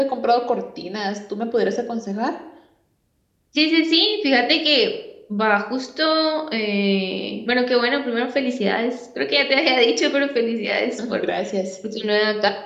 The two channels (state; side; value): identical; both; correlation 1.00